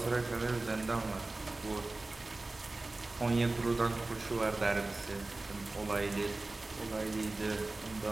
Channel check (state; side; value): quieter; left; 3.1 dB